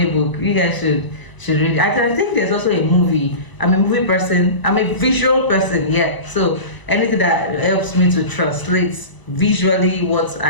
book. You guys should read it. I think there's also a movie. I'm a movie person. I'm a visual person. Yeah. So anything that helps me to translate visually what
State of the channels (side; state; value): right; late; 1.0 ms